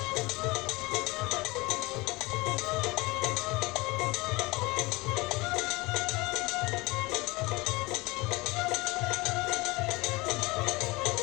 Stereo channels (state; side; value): quieter; right; 23.1 dB